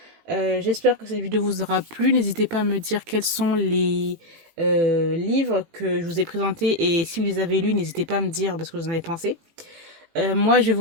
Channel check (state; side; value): late; left; 18 ms